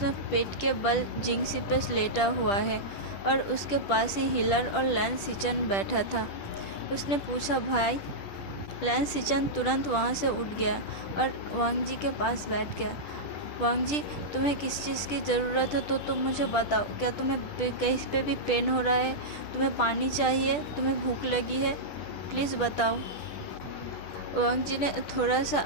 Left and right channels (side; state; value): right; late; 10 ms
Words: पेट के बल जिंगसी पे लेटा हुआ है और उसके पास ही हिलर और लैन सिचान बैठा था। उसने पूछा, भाई? लैन सिचान तुरंत वहाँ से उठ गया और वांगजी के पास बैठ गया। वांगजी, तुम्हें किस चीज़ की ज़रूरत है तो तुम मुझे बताओ। क्या तुम्हें कहीं पे भी पेन हो रहा है? तुम्हें पानी चाहिए? तुम्हें भूख लगी है? प्लीज़ बताओ। वांगजी ने थोड़ा